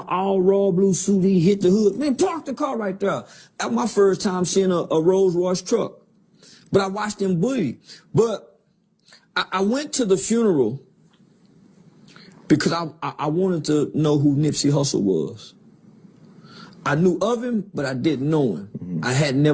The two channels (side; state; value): both; identical; correlation 1.00